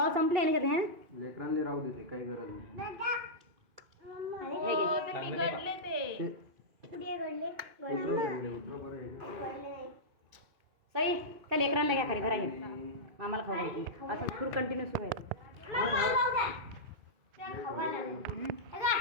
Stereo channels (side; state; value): left; late; 2.5 ms